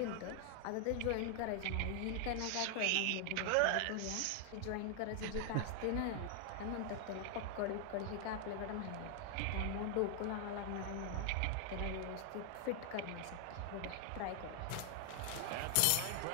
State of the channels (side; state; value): both; different; correlation 0.00